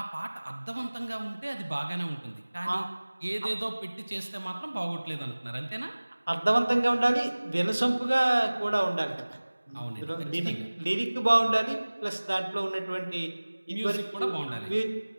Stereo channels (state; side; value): inverted; both; correlation -1.00